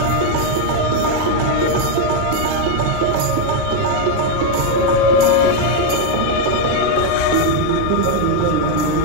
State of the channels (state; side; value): different; both; correlation 0.01